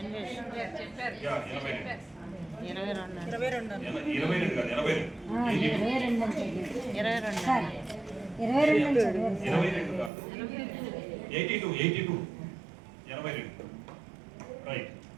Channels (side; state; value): left; drops out; at 10.1 s